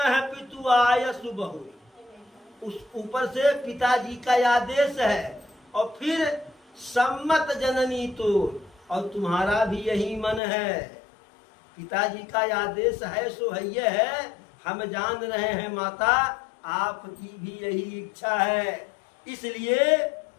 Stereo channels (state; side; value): drops out; right; at 10.4 s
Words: पितु आय सुबहु, उस ऊपर से पिताजी का आदेश है। और फिर सम्मत जननी तो, और तुम्हारा भी यही मन है। पिताजी का आदेश है सो है, हम जान रहे हैं माता आपकी भी यही इच्छा है। इसलिए